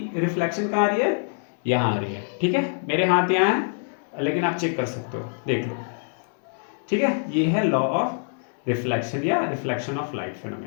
रिफ्लेक्शन कहां आ रही है, यहां आ रही है, ठीक है, मेरे हाथ यहां है लेकिन आप चेक कर सकते हो, देख लो, ठीक है। ये है लॉ ऑफ रिफ्लेक्शन या रिफ्लेक्शन ऑफ लाइट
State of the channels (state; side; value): silent; right; 62 dB below the other